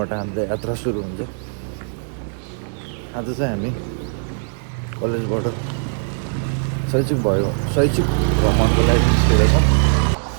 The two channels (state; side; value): silent; left; digital silence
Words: हाम्रो यात्रा सुरु हुन्छ। आज चाहिँ हामी कलेजबाट शैक्षिक भ्रमणको लागि निस्केका छौँ